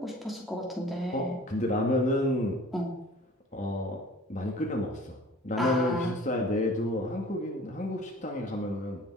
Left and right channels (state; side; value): normal; both; correlation 0.47